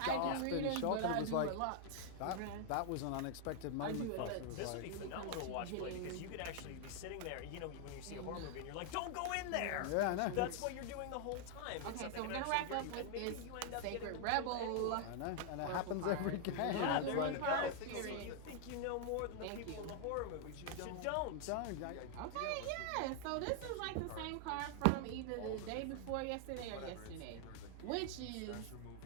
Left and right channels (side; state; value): both; different; correlation 0.00